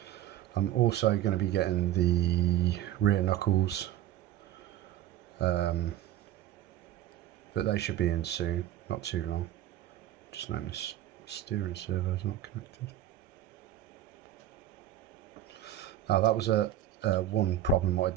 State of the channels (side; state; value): left; quieter; 11.9 dB